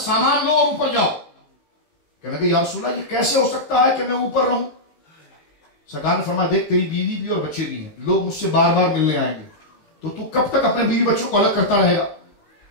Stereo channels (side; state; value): right; late; 19 ms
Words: لو اور اوپر جاؤ۔ کہنے کہ یا رسول اللہ یہ کیسے ہو سکتا ہے کہ میں اوپر رہوں؟ سرکار نے فرمایا دیکھ تیری بیوی بھی اور بچے بھی ہیں، لوگ مجھ سے بار بار ملنے آئیں گے، تو کب تک اپنے بیوی بچوں کو الگ کرتا رہے گا؟